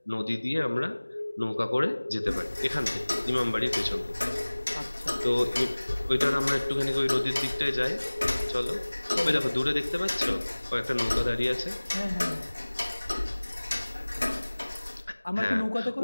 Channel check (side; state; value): both; inverted; correlation -1.00